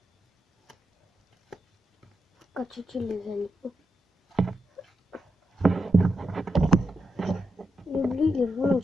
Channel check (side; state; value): both; normal; correlation 0.85